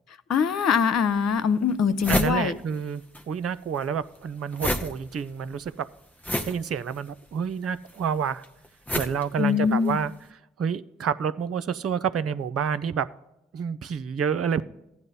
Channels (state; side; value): normal; both; correlation 0.51